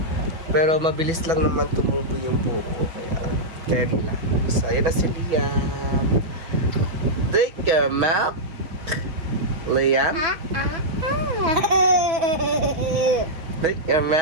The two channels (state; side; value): late; left; 5.9 ms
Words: Pero mabilis lang naman tumubo yung buhok ko, kaya carry lang. So, ayan na si Liam. Drink your milk. Liam? Drink your